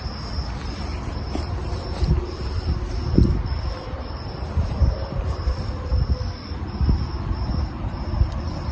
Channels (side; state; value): both; identical; correlation 1.00